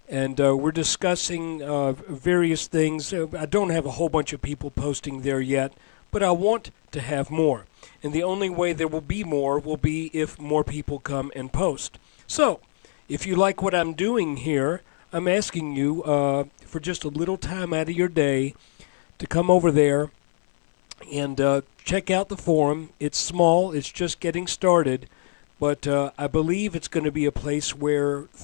and we're discussing various things. I don't have a whole bunch of people posting there yet, but I want to have more. And the only way there will be more will be if more people come and post. So, if you like what I'm doing here, I'm asking you for just a little time out of your day to come over there and check out the forum. It's small, it's just getting started, but I believe it's going to be a place where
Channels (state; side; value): silent; right; 62 dB below the other